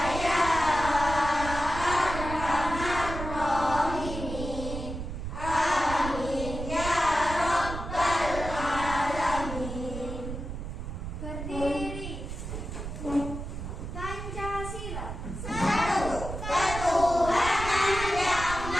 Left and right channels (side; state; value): right; noise; rumble, 7 dB below the sound